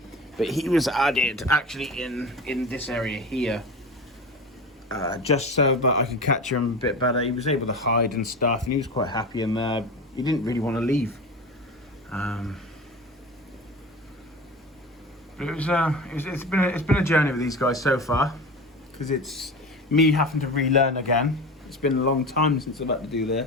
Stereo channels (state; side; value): normal; both; correlation 0.30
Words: but he was added actually in this area here, just so that I could catch him a bit better. He was able to hide and stuff, and he was quite happy in there. He didn't really want to leave. But it's been a journey with these guys so far, because it's me having to relearn again. It's been a long time since I've had to do